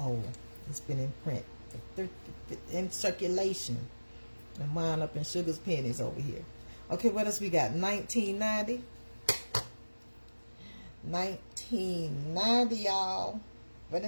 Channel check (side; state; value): both; inverted; correlation -1.00